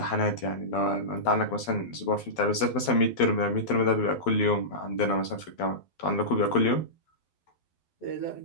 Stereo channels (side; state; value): right; late; 12 ms